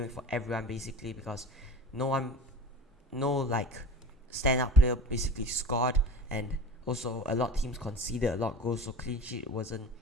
week for everyone basically because no standout player basically scored, and also a lot of teams conceded a lot of goals, so clean sheet wasn't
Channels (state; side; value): normal; both; correlation 0.36